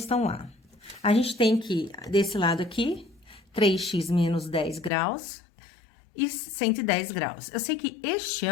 A. A gente tem que, desse lado aqui, 3x menos 10 graus... e 110 graus. Eu sei que este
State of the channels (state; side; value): drops out; right; at 4.9 s